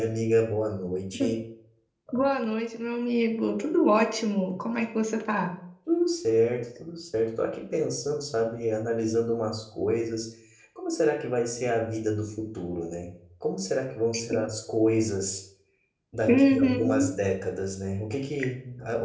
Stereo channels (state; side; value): identical; both; correlation 1.00